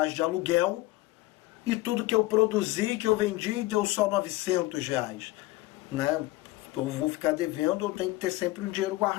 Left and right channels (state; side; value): quieter; right; 18.9 dB